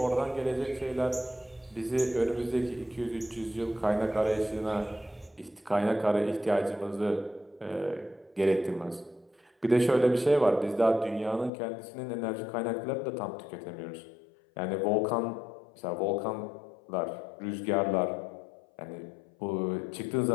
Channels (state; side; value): drops out; right; at 11.5 s